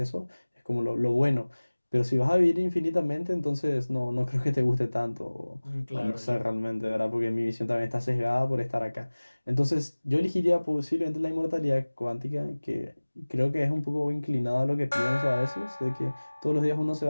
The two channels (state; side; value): inverted; both; correlation -1.00